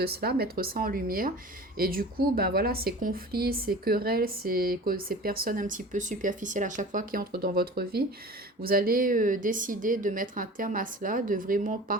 cela, mettre ça en lumière. Et du coup, ben voilà, ces conflits, ces querelles, ces personnes un petit peu superficielles à chaque fois qui entrent dans votre vie, vous allez décider de mettre un terme à cela, de vraiment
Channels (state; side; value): normal; both; correlation 0.39